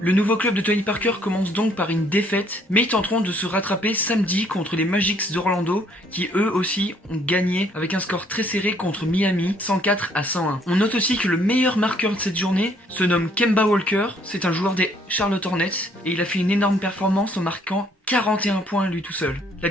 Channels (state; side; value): normal; both; correlation 0.64